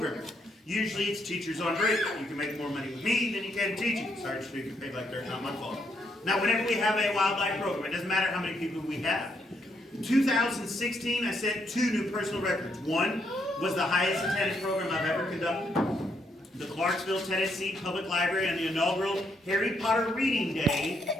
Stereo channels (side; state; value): both; normal; correlation 0.75